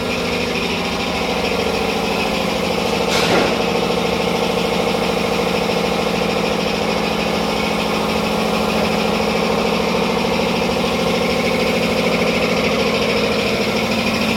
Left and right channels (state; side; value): identical; both; correlation 1.00